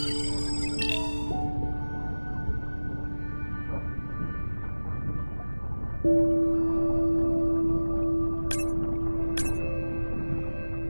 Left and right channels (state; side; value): inverted; both; correlation -1.00